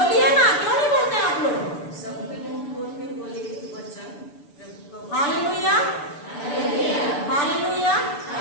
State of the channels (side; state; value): right; late; 6.9 ms